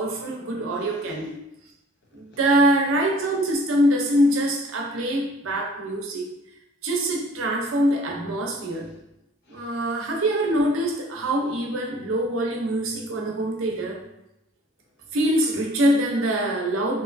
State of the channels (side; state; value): both; normal; correlation 0.52